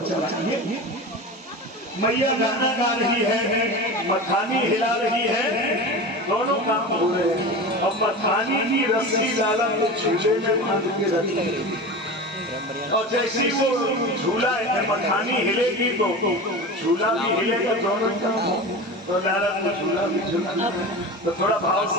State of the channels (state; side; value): normal; both; correlation 0.29